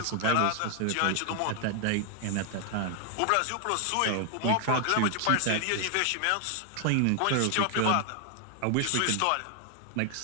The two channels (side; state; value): both; different; correlation 0.00